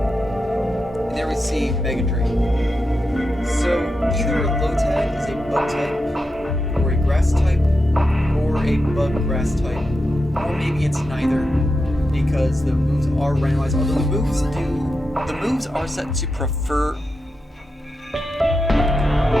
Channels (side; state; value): both; normal; correlation 0.88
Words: And there we see Mega Drain. So, either Lotad is a bug type, or a grass type, or a bug grass type, or maybe it's neither, because the moves are randomized, although the moves are set to prefer.